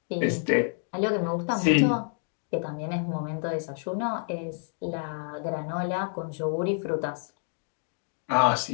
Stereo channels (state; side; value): silent; right; 59 dB below the other